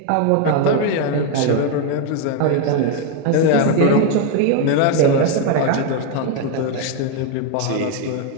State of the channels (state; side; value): different; both; correlation 0.01